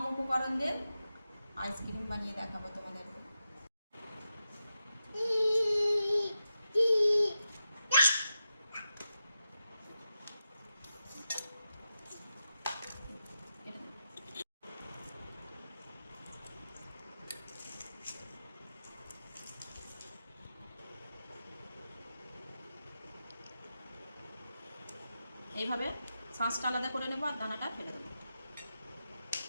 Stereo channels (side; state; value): both; inverted; correlation -0.89